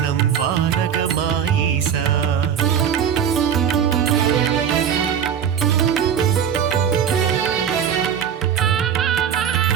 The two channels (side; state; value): left; quieter; 8.3 dB